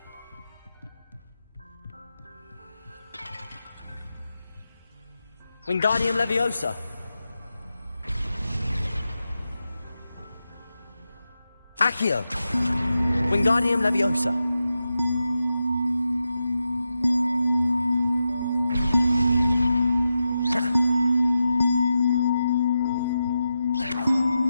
Wingardium Leviosa. Accio. Wingardium Leviosa.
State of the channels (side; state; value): both; inverted; correlation -0.89